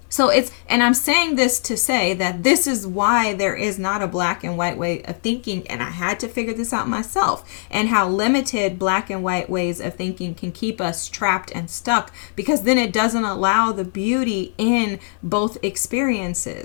So and I'm saying this to say that this is why there is not a black and white way of thinking, and I had to figure this out myself, and how limited black and white ways of thinking can keep us trapped and stuck, because then it doesn't allow the beauty in both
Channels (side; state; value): right; silent; 62 dB below the other